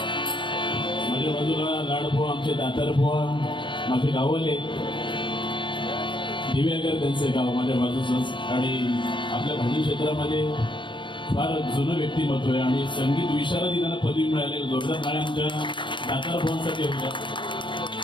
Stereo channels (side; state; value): right; late; 0.23 ms